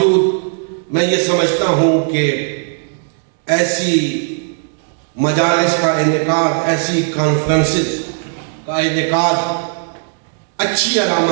میں یہ سمجھتا ہوں کہ ایسی مجالس کا انعقاد، ایسی کانفرنسز کا انعقاد اچھی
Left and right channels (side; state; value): left; silent; 64 dB below the other